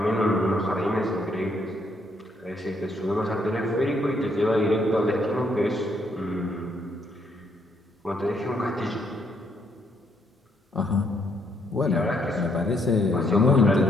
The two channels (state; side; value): normal; both; correlation 0.73